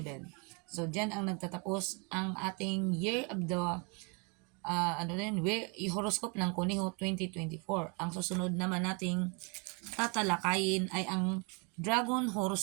So, dyan ang nagtatapos ang ating Year of the horoscope ng Kuniho 2024. Ang susunod naman nating tatalakayin ay ang Dragon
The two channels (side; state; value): left; quieter; 33.5 dB